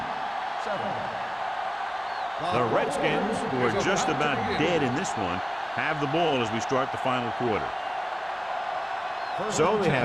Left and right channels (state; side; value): identical; both; correlation 1.00